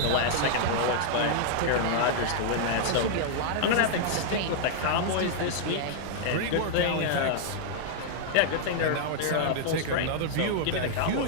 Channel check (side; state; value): both; different; correlation -0.01